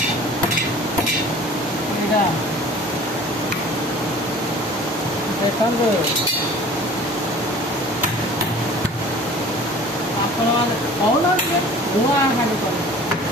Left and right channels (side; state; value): both; normal; correlation 0.45